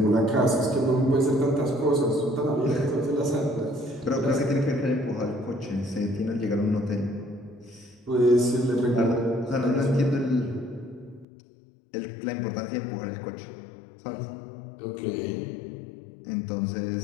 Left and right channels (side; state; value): right; drops out; at 11.2 s